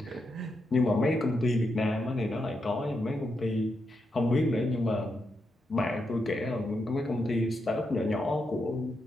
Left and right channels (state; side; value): normal; both; correlation 0.84